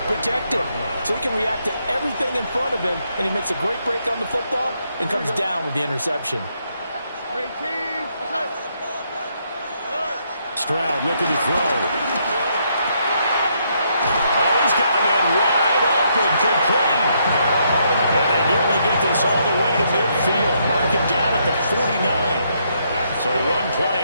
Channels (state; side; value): inverted; both; correlation -0.74